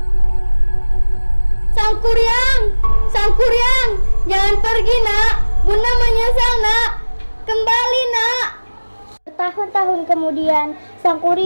Sang Kuryang, jangan pergi nak. Bunda menyesal nak. Kembali nak. Bertahun-tahun kemudian, Sang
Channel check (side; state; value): both; inverted; correlation -1.00